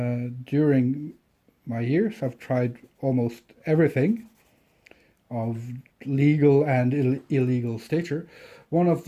my years. I've tried almost everything of legal and illegal stature. One of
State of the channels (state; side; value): identical; both; correlation 1.00